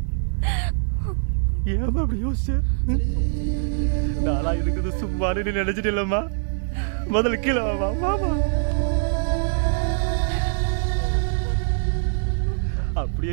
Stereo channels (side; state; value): left; silent; digital silence